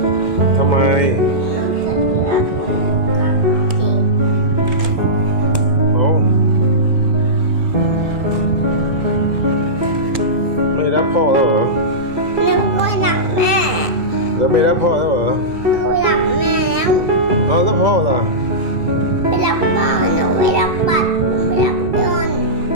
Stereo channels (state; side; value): late; left; 2.2 ms